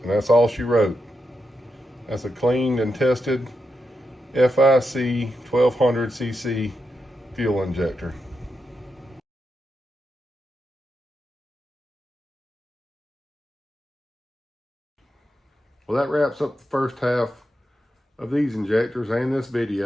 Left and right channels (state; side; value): normal; both; correlation 0.87